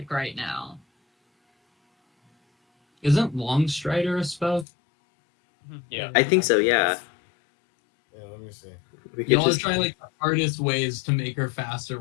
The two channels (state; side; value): drops out; right; at 4.7 s